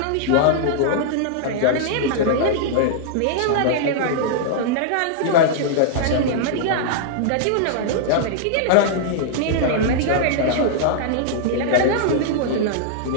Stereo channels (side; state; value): both; different; correlation -0.01